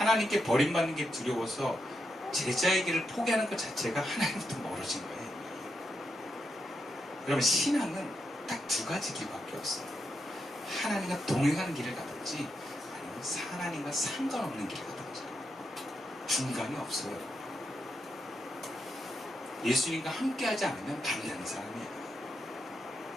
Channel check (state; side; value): normal; both; correlation 0.84